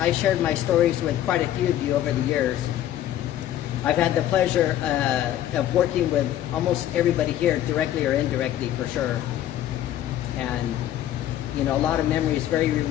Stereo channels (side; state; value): right; quieter; 12.2 dB